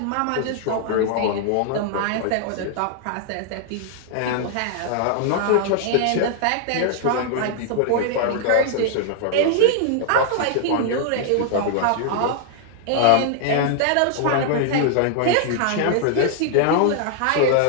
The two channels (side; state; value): both; different; correlation 0.00